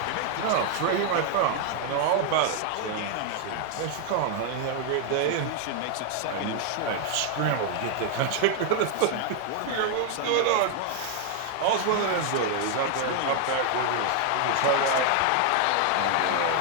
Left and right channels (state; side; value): different; both; correlation 0.00